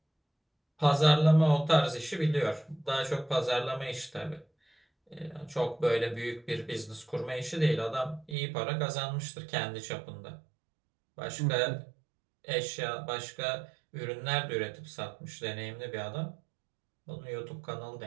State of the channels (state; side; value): drops out; left; at 8.3 s